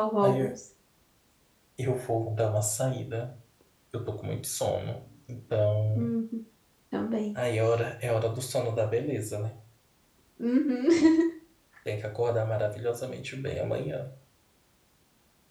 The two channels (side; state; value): both; identical; correlation 1.00